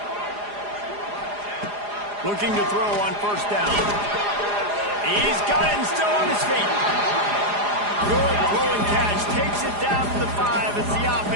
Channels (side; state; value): left; late; 4.9 ms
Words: Looking to throw on 1st down. He's got it and still on his feet. Good throw and catch. Takes it down to the 5 as the